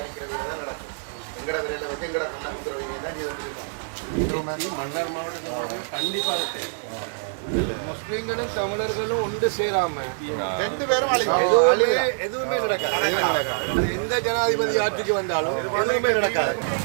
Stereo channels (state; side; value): silent; left; digital silence